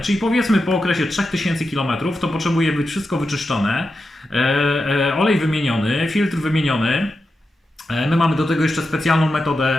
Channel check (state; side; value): normal; both; correlation 0.89